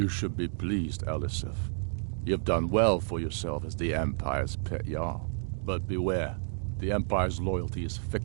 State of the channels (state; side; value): silent; left; digital silence